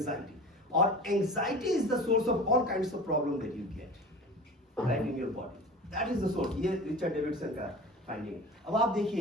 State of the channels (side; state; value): both; normal; correlation 0.36